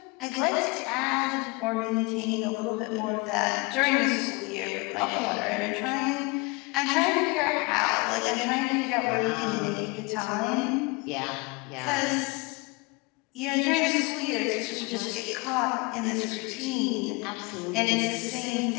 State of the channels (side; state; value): right; quieter; 27.3 dB